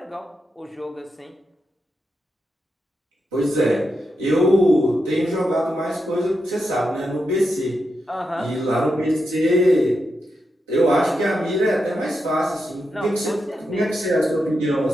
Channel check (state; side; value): normal; both; correlation 0.86